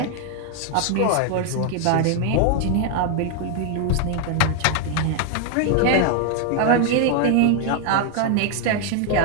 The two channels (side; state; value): both; different; correlation 0.00